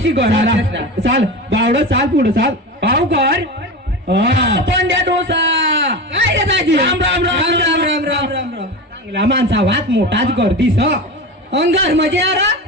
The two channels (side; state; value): both; normal; correlation 0.26